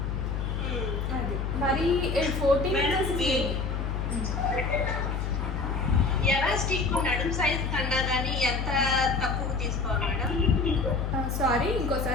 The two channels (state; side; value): noise; left; hum, 2 dB below the sound